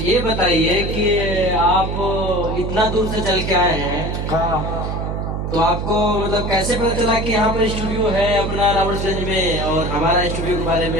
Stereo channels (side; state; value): right; noise; hum, 3 dB below the sound